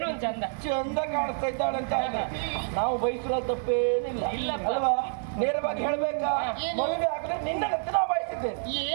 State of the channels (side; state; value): left; silent; 59 dB below the other